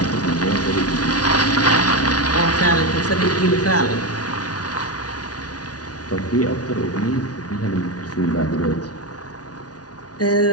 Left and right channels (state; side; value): late; right; 0.68 ms